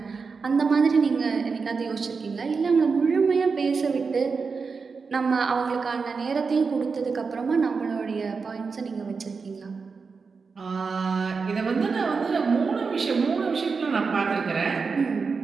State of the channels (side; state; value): left; quieter; 5.0 dB